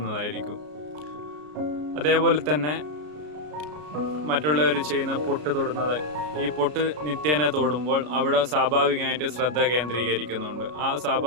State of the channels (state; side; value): late; left; 33 ms